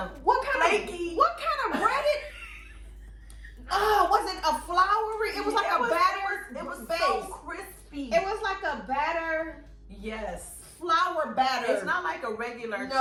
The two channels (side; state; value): both; identical; correlation 1.00